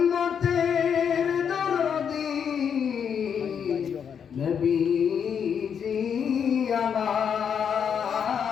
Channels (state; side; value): quieter; right; 7.5 dB